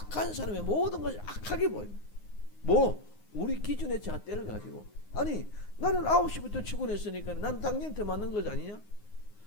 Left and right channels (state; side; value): late; right; 9.6 ms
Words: 사람의 모든 것이 악하게 보여요. 우리 기준의 잣대를 가지고 아니 나는 9시부터 출근했으니까 난 당연히 더 맞는 것 아니냐?